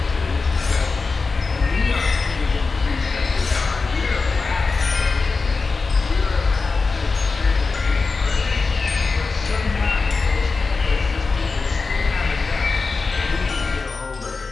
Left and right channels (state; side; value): quieter; right; 4.2 dB